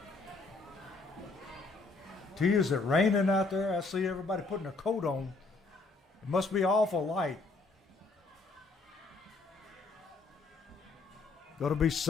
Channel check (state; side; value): quieter; right; 3.7 dB